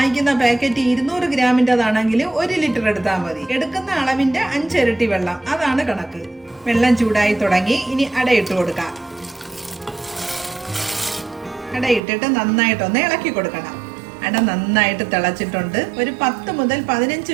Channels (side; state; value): left; drops out; at 12.0 s